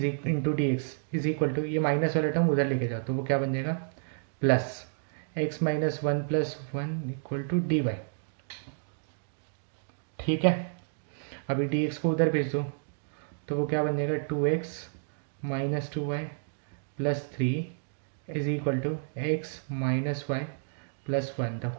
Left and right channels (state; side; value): silent; left; digital silence